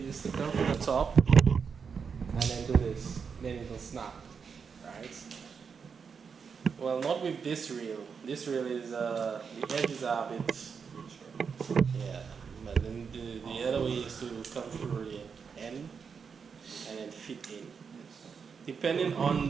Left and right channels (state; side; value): quieter; left; 6.1 dB